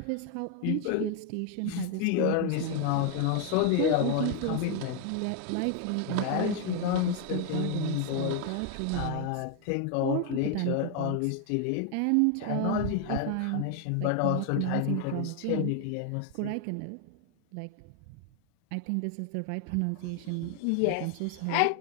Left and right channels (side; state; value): both; different; correlation 0.01